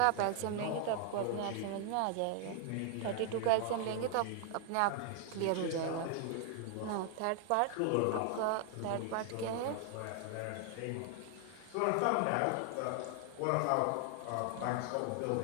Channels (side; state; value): both; different; correlation 0.00